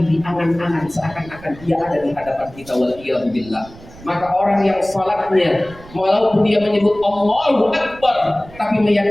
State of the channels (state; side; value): noise; right; rumble, 20 dB below the sound